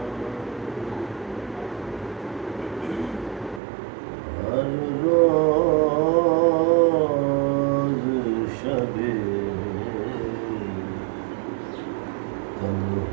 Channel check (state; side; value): drops out; left; at 3.6 s